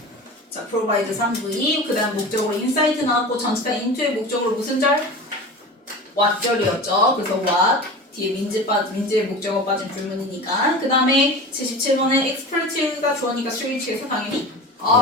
provide 3V 그 다음 목적으로 insight 나왔고 전치사 into의 목적으로 무슨 절? what절이었죠. 그래서 what 뒤에 민지의 목적어 빠진 불문이니까 그 다음에 77번에 expert가 주어니까 switch에서 당연히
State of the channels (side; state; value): both; normal; correlation 0.33